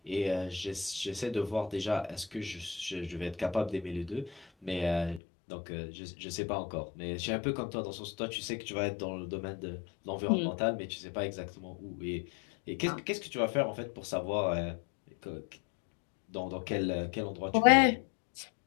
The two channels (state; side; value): drops out; right; at 5.2 s